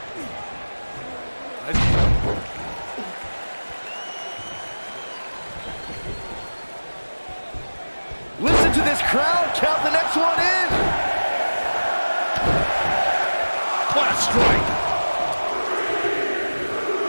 Listen to this crowd count the next one in. What a strike.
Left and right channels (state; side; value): inverted; both; correlation -1.00